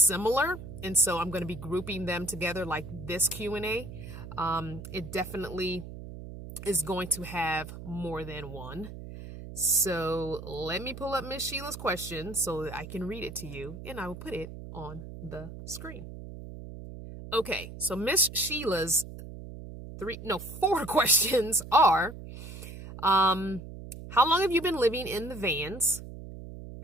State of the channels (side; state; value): right; noise; hum, 12 dB below the sound